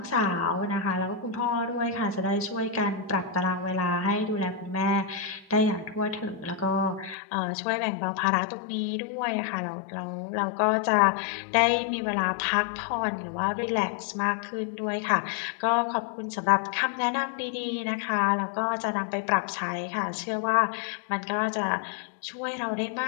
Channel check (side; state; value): right; drops out; at 7.2 s